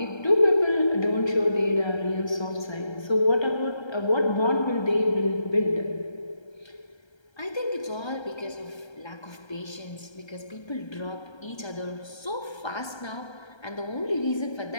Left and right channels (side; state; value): right; late; 1.3 ms